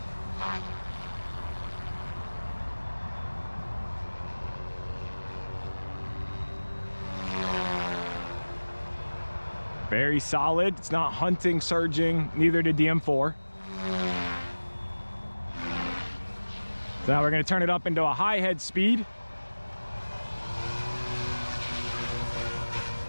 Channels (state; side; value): inverted; both; correlation -1.00